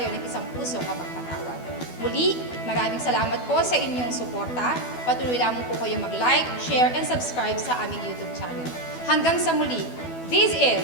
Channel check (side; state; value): right; late; 12 ms